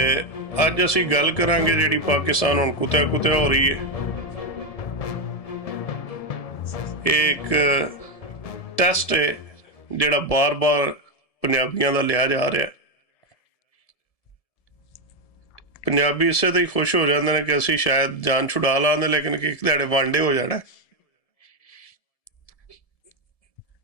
ਅੱਜ ਅਸੀਂ ਗੱਲ ਕਰਾਂਗੇ ਜਿਹੜੀ ਪਾਕਿਸਤਾਨ ਹੁਣ ਕੁੱਤਿਆ ਕੁੱਤਿਆ ਹੋ ਰਹੀ ਹੈ। ਇਹ ਇੱਕ ਟੈਸਟ ਹੈ ਜਿਹੜਾ ਬਾਰ-ਬਾਰ ਪੰਜਾਬੀਆਂ ਦਾ ਲਿਆ ਜਾ ਰਿਹਾ। ਪੰਜਾਬੀ ਇਸੇ ਤੇ ਹੀ ਖੁਸ਼ ਹੋ ਜਾਂਦੇ ਨੇ ਕਿ ਅਸੀਂ ਸ਼ਾਇਦ ਜਾਨ ਛੁਡਾ ਲਾਂਦੇ, ਲੇਕਿਨ ਇੱਕ ਦਿਹਾੜੇ ਵਾਂਡੇ ਹੋ ਜਾਣਾ,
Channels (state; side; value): late; right; 1.7 ms